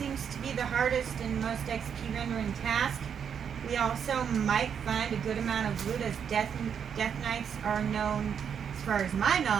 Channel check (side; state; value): left; quieter; 7.6 dB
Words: to be the hardest and most XP rendering task. We also might find a good amount of loot, as Death Knights are known, as far as my